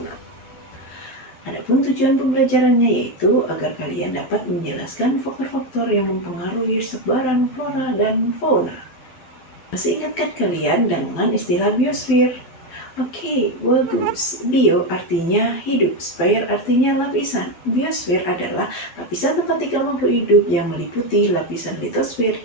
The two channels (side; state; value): right; late; 12 ms